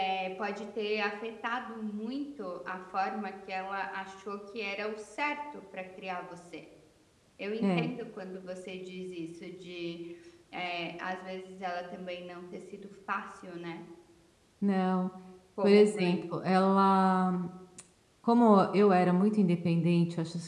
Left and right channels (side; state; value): both; identical; correlation 1.00